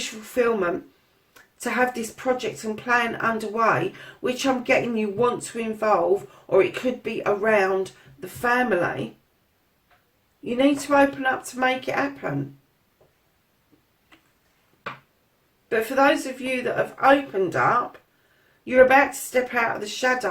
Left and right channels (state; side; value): identical; both; correlation 1.00